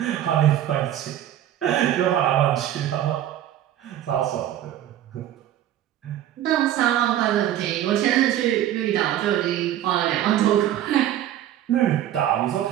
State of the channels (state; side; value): quieter; left; 11.9 dB